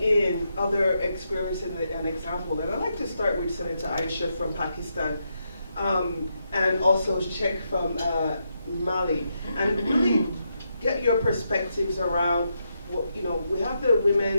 in other experience and example. And I'd like to start with Senator Aisha from Pakistan and also Sheikh from Mali, and really get your perspectives around, we have the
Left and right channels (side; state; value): both; inverted; correlation -0.82